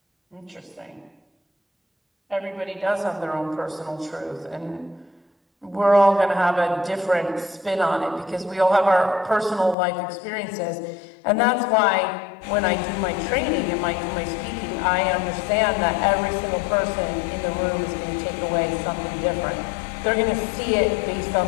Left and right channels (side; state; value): right; drops out; at 9.8 s